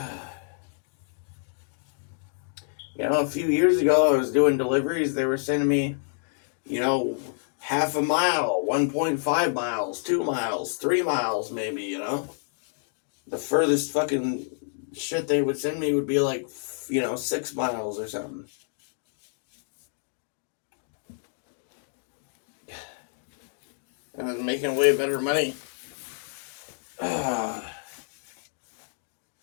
A few years ago, I was doing deliveries. They were sending me, half a mile, 1.5 miles, 2 miles, 3 miles, maybe, The furthest fucking shit they would send me would be like, 6 miles or something. And I was making way better money.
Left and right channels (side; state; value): right; silent; digital silence